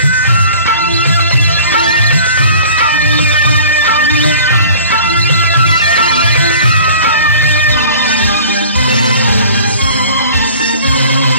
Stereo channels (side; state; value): both; inverted; correlation -0.45